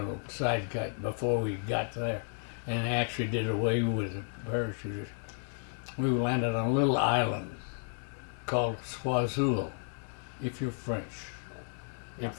side cut before we got there, and actually did away with the parachuters. We landed on a little island called Swazul, if you're French.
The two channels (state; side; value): silent; right; 56 dB below the other